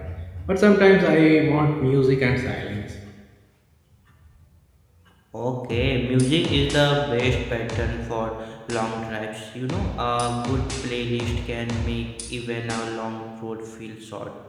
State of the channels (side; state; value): both; identical; correlation 1.00